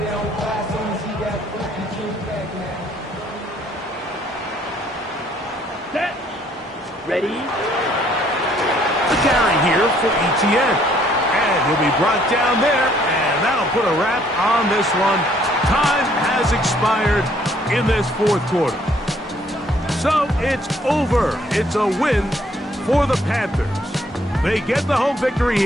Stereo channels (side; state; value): both; normal; correlation 0.64